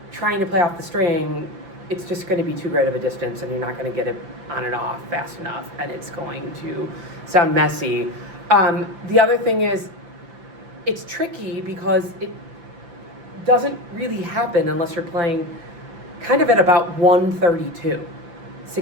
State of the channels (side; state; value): left; late; 5.9 ms